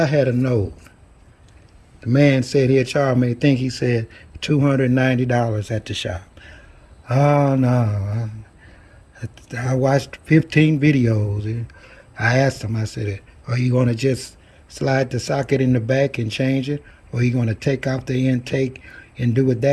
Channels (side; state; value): both; identical; correlation 1.00